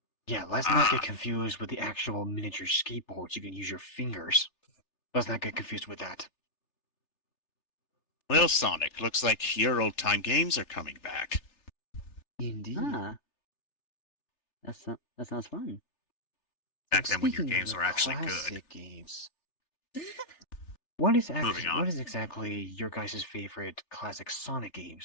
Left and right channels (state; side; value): late; right; 3.4 ms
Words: yeah, let's not get confused with the actual miniature skateboards. You can use your fingers. Let's not get confused with that. Well, Sonic, looks like your old-time games are coming back. Indeed. Ah. That sounds fun. Back then when your Speaking of games the were actually good. classic games, what is Moving on. what is exactly your guys' favorite classic Sonic